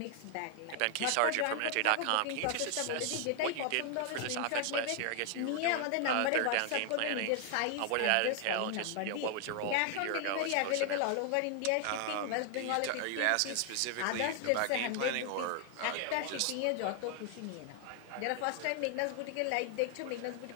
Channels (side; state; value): both; different; correlation 0.00